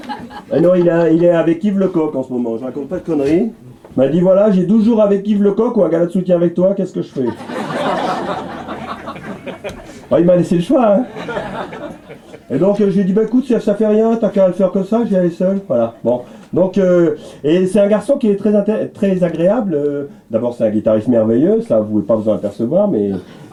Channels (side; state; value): both; identical; correlation 1.00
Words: Non, il est avec Yves Lecoq en ce moment, je raconte pas de conneries. Il m'a dit voilà, j'ai 12 jours avec Yves Lecoq ou un gala de soutien avec toi, qu'est-ce que je fais? Il m'a laissé le choix, hein. Et donc j'ai dit bah écoute, ça fait rien, t'as qu'à le faire comme ça, j'y aller seul, voilà. Bon, donc et c'est un garçon qui est très agréable. D'abord c'est un guitariste merveilleux, ça vous pouvez pas vous en apercevoir, mais